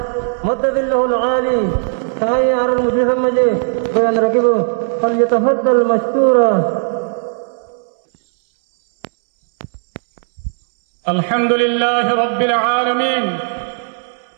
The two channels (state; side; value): silent; left; 69 dB below the other